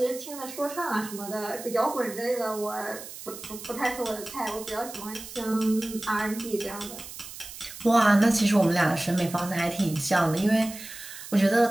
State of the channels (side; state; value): right; noise; hiss, 13 dB below the sound